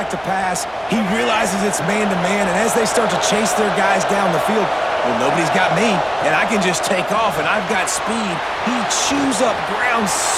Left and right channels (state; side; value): identical; both; correlation 1.00